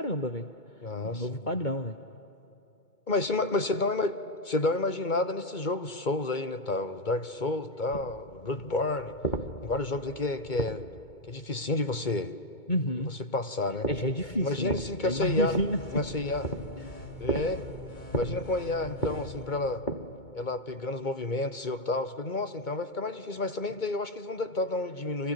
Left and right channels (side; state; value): right; late; 2.2 ms